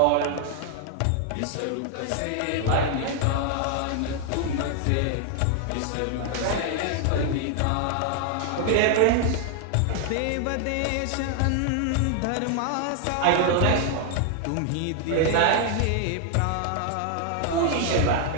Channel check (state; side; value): different; both; correlation 0.00